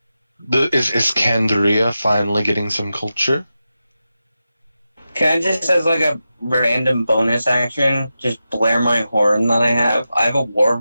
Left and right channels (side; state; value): both; inverted; correlation -0.91